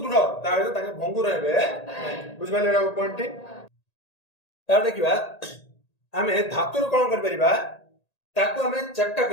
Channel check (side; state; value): right; late; 1.8 ms